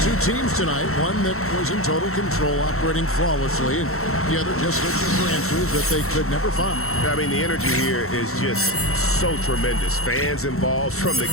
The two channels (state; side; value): late; right; 0.63 ms